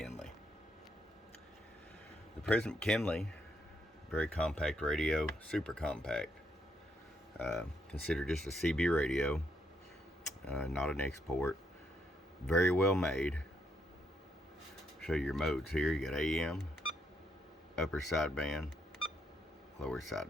The President McKinley, very compact radio, super compact. Considered just a CB radio, not an export. Very well made. Show you your modes here. You got AM, upper sideband, lower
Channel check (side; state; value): both; normal; correlation 0.76